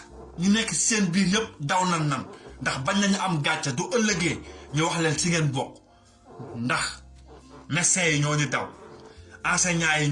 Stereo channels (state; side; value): identical; both; correlation 1.00